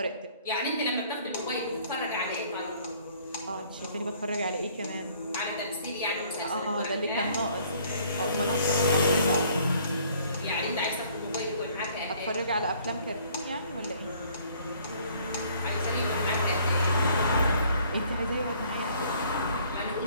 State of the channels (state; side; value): inverted; both; correlation -0.59